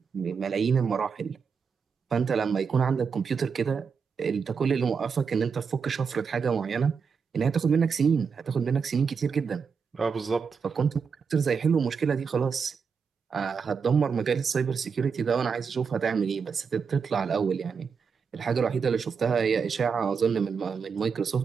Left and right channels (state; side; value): quieter; left; 5.9 dB